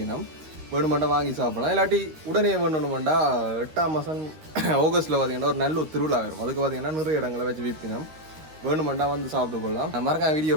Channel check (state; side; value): late; left; 13 ms